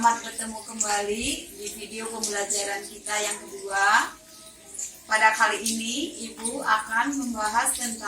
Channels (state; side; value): identical; both; correlation 1.00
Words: bertemu kembali di video pembelajaran kita yang kedua. Pada kali ini, Ibu akan membahas